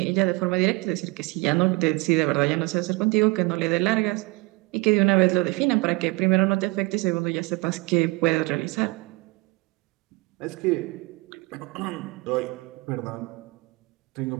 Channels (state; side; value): quieter; left; 25.7 dB